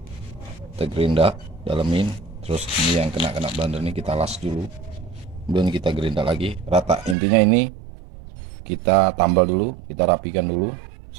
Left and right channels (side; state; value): left; drops out; at 7.2 s